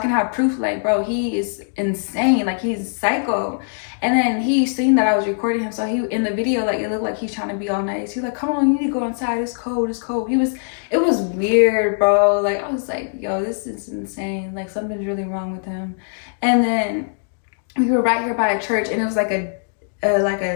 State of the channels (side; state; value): right; silent; digital silence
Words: have proof. Like, bro, he is insane. Like, he's psycho. And then he seen that I was recording him. So he in the video, like, it looked like he's trying to be all nice. He was like, come on, you need to go inside. It's cold. It's cold. It was weird, bro. Like, I was like, yo, this is insane. Like, something's really wrong with him. And then we were right here by a church, and it was like a